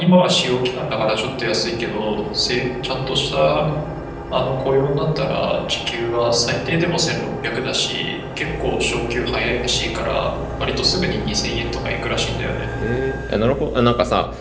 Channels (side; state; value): both; identical; correlation 1.00